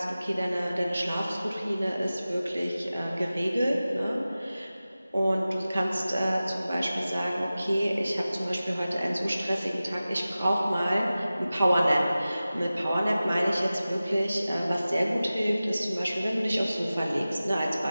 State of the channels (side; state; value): both; inverted; correlation -0.96